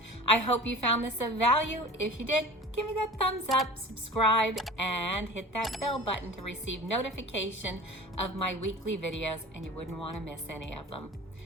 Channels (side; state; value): both; normal; correlation 0.38